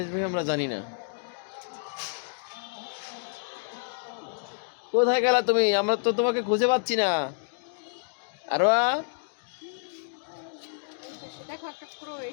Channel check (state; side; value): silent; right; digital silence